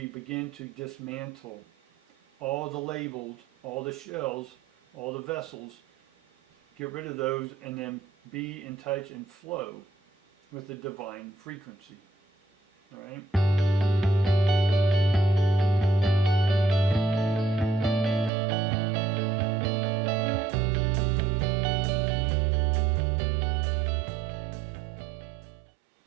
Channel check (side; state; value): left; drops out; at 18.3 s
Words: begin to dismantle all the labels, all the shells, all the vessels, get rid of those, and then be in touch and flow with the divine frequency. All right?